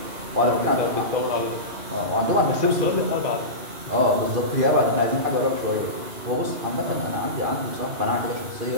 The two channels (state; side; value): late; left; 2.5 ms